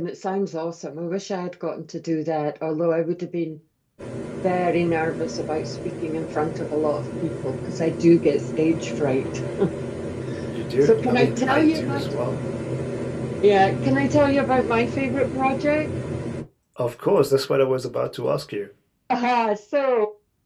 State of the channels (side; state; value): both; identical; correlation 1.00